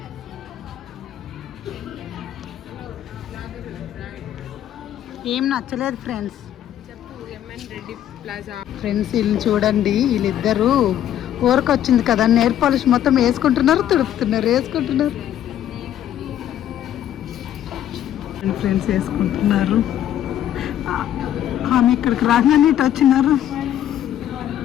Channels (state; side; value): quieter; right; 11.2 dB